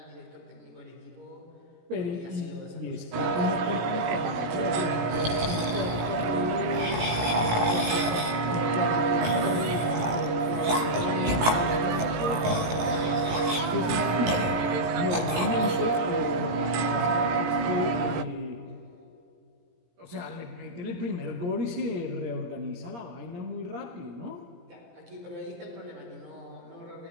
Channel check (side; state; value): left; late; 18 ms